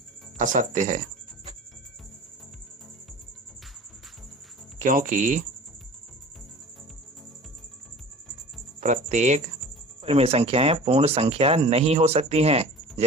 असत्य है, क्योंकि प्रत्येक परिमेय संख्याएं पूर्ण संख्या नहीं हो सकती हैं।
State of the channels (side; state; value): both; normal; correlation 0.41